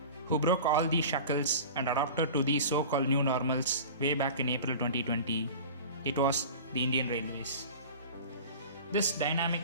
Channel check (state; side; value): inverted; both; correlation -0.36